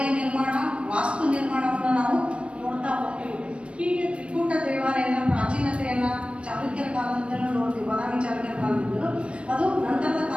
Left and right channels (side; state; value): left; late; 0.060 ms